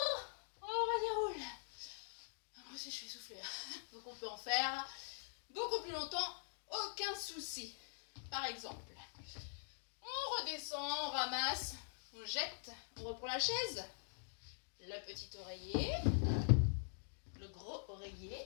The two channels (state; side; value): silent; right; digital silence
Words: on redéroule. Moi aussi, je suis essoufflée. Donc, on peut en faire beaucoup plus longtemps. Aucun souci. Par exemple, on redescend, on ramasse, on jette, on reprend la chaise. Le petit oreiller, le gros